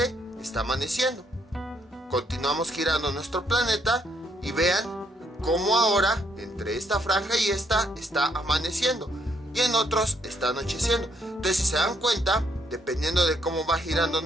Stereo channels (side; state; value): both; normal; correlation 0.72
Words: está amaneciendo. Continuamos girando nuestro planeta y vean cómo ahora entre esta franja y esta está amaneciendo, y en otros está anocheciendo. Entonces, si se dan cuenta, dependiendo de cómo va girando